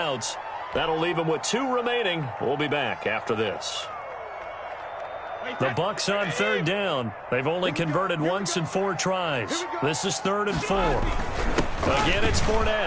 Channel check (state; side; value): identical; both; correlation 1.00